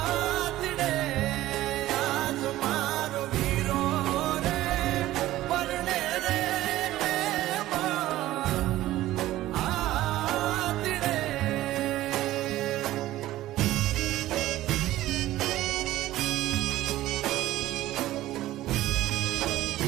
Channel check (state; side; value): quieter; left; 15.3 dB